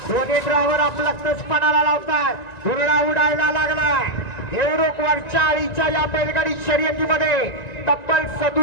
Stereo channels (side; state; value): right; late; 1.9 ms